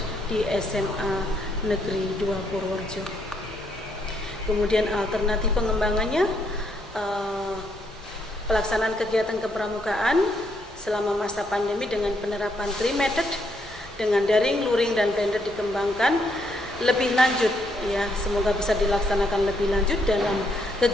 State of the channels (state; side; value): normal; both; correlation 0.74